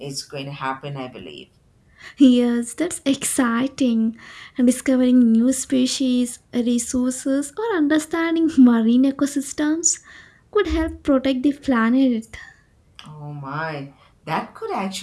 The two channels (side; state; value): both; identical; correlation 1.00